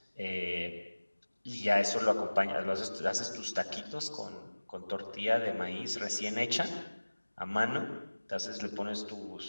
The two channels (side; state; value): both; inverted; correlation -1.00